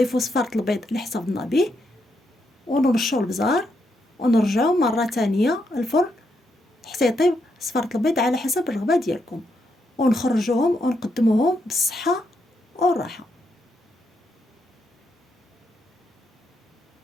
صفارة البيض اللي حسبنا به ونرشوا البزار ونرجعوا مرة تانية الفرن حتى يطيب صفارة البيض على حسب الرغبة ديالكم، ونخرجوهم ونقدموهم بالصحة والراحة.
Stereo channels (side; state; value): both; normal; correlation 0.80